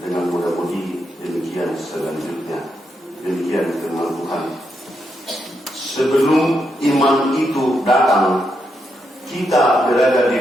dengan muda-mudi demikian selanjutnya. Demikian firman Tuhan. Sebelum iman itu datang, kita berada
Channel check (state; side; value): normal; both; correlation 0.82